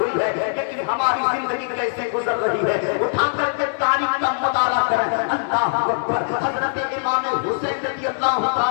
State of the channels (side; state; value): right; silent; 65 dB below the other